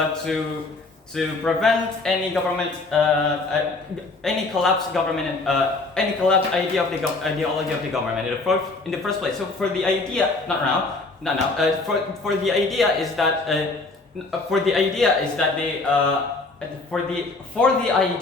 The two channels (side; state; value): right; quieter; 3.5 dB